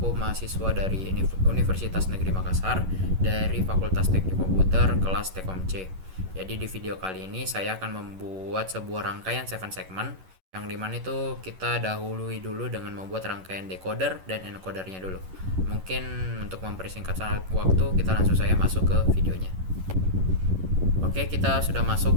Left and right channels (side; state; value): left; late; 11 ms